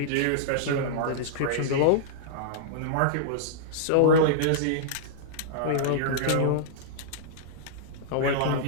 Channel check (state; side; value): different; both; correlation -0.02